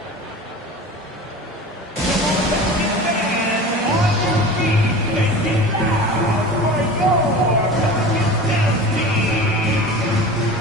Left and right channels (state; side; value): normal; both; correlation 0.35